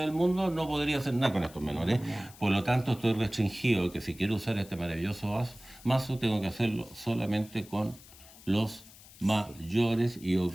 mundo, no podría hacer nada con estos menores. Por lo tanto, estoy restringido que si quiero usar este maravilloso mazo, tengo que hacerlo solamente con los mayores y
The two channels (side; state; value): left; noise; hiss, 21 dB below the sound